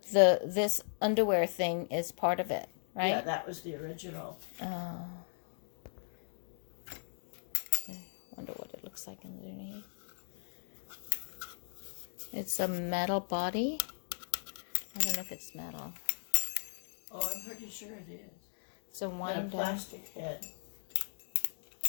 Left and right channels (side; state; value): right; silent; digital silence